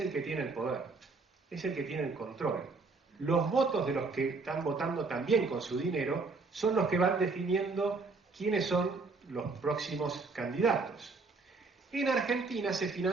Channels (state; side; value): quieter; left; 4.0 dB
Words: que tiene el poder, es el que tiene el control. Los votos de los que están votando también con su dinero son los que van definiendo quiénes son los próximos candidatos. En Argentina se